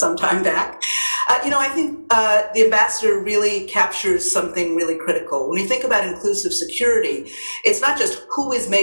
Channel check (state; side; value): inverted; both; correlation -1.00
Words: time back. I think the ambassador really captures something really critical. When you think about inclusive security, it's not just who is